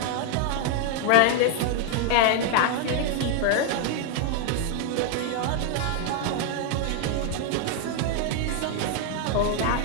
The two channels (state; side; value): different; both; correlation 0.00